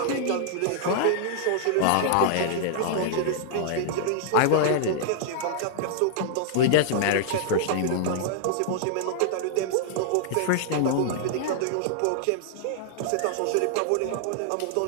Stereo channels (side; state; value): both; different; correlation -0.01